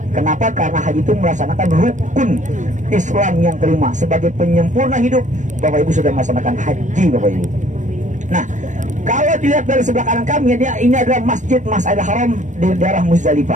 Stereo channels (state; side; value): late; left; 0.36 ms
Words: Kenapa? Karena haji itu melaksanakan rukun Islam yang kelima. Sebagai penyempurna hidup, Bapak Ibu sudah melaksanakan haji Bapak Ibu. Nah, kalau dilihat dari sebelah kanan kami, ini adalah Masjid Mas'idil Haram di daerah